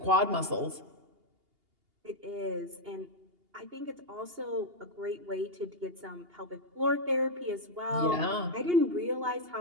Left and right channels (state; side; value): late; left; 2.8 ms